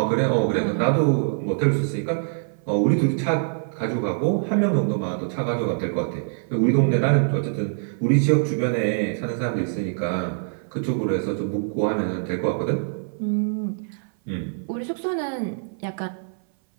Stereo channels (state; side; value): silent; left; 58 dB below the other